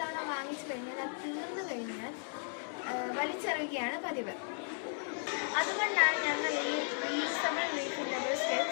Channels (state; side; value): silent; right; 54 dB below the other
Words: തവണ വാങ്ങിച്ചു കഴിഞ്ഞാൽ അത് തീർന്നു കഴിഞ്ഞാൽ വലിച്ചെറിയുകയാണ് പതിവ്. അതുകൊണ്ടാണ് ഞങ്ങൾ ഈ റീയൂസബിൾ റീഫില്ലബിൾ